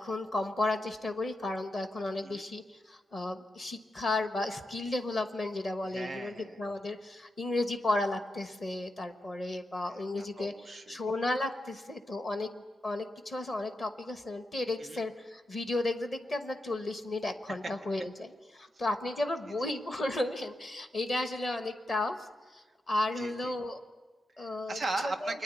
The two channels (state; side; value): normal; both; correlation 0.87